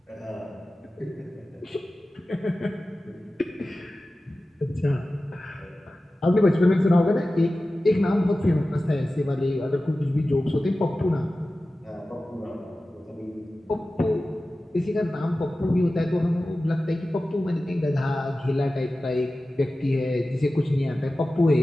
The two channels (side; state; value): both; normal; correlation 0.95